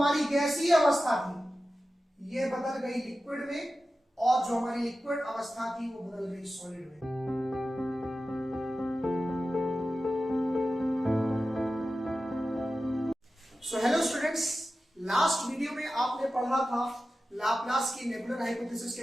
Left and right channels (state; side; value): normal; both; correlation 0.94